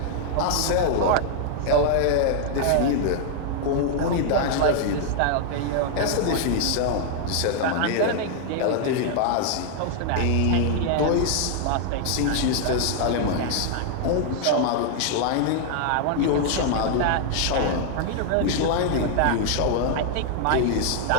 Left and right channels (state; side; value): different; both; correlation 0.00